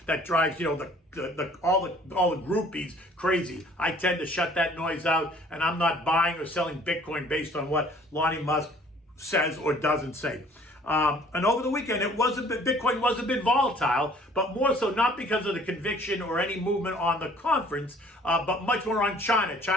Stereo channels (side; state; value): both; normal; correlation 0.55